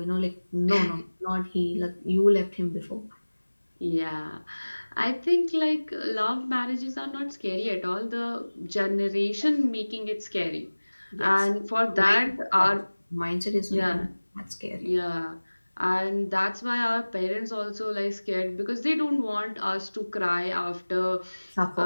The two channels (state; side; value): inverted; both; correlation -1.00